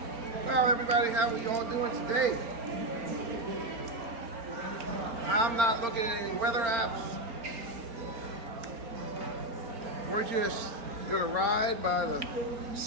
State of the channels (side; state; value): left; late; 4.3 ms